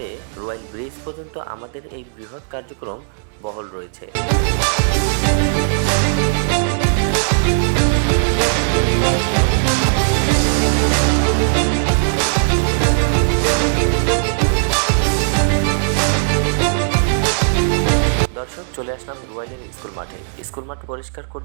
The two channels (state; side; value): silent; left; digital silence